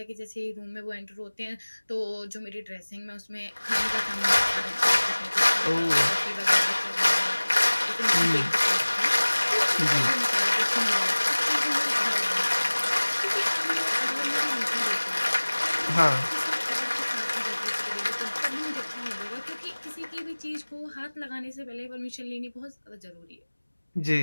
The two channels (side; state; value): both; inverted; correlation -1.00